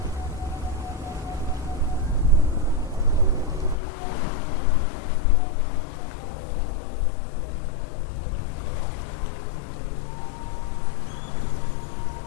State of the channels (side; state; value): right; drops out; at 3.8 s